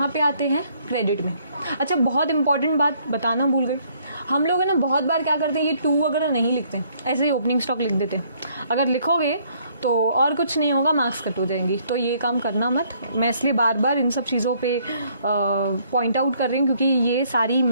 पे आते हैं क्रेडिट में। अच्छा, बहुत इंपॉर्टेंट बात बताना भूल गई, हम लोग है ना बहुत बार क्या करते हैं, ये टू वगैरह नहीं लिखते, ऐसे ही ओपनिंग स्टॉक लिख देते हैं। अगर लिखोगे तो और कुछ नहीं होगा, मार्क्स कट हो जाएंगी, तो ये काम करना मत। मैं इसलिए बार बार इन सब चीज़ों पे पॉइंट आउट कर रही हूँ क्योंकि ये सारी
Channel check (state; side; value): inverted; both; correlation -0.65